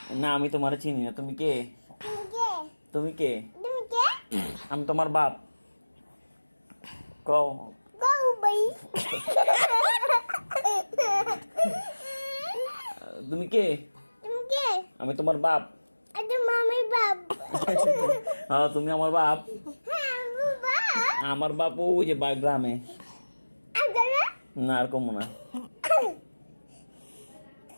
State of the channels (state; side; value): inverted; both; correlation -1.00